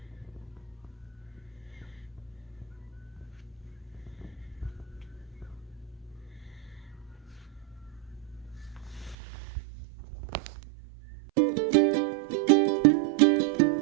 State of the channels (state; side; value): drops out; left; at 9.2 s